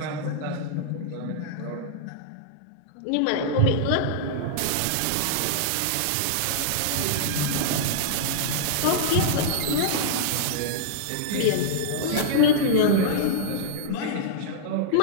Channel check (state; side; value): different; both; correlation -0.02